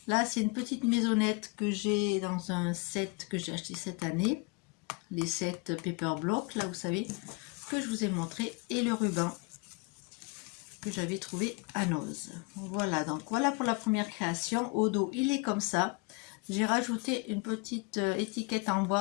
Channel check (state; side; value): quieter; right; 30.5 dB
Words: Là, c'est une petite maisonnette que j'ai dans un set que j'ai acheté cette année. Les sets paper block, là, vous savez, que je vous ai montré. Et le ruban que j'avais trouvé à Noz. Voilà, donc voilà pour la première création. Au dos, il est comme ça. J'ai rajouté une petite étiquette en bois,